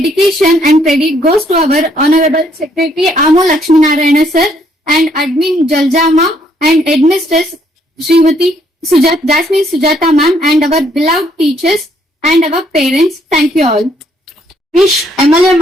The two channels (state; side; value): normal; both; correlation 0.68